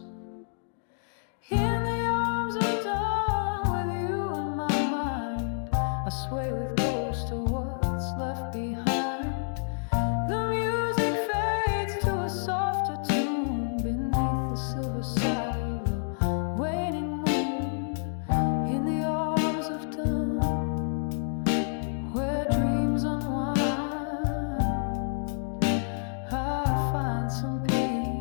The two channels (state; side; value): silent; right; digital silence